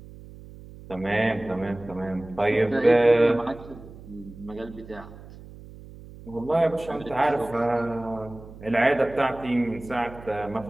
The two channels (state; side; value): noise; right; hum, 17 dB below the sound